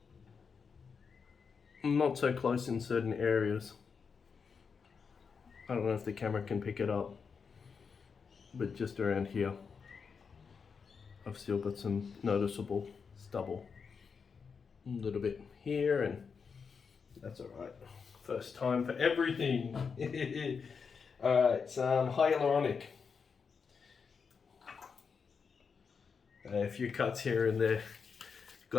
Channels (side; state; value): right; quieter; 5.8 dB